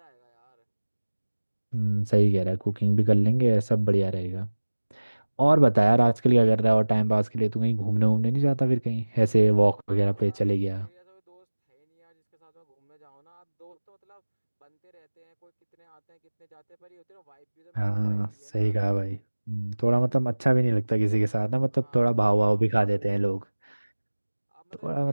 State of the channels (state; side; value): inverted; both; correlation -1.00